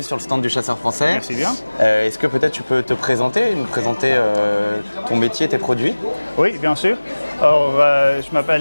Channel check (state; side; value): inverted; both; correlation -1.00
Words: sur le stand du Chasseur Français. Merci bien. Est-ce que peut-être tu peux te présenter, nous présenter ton métier, tes produits? Oui, bien sûr. Alors, je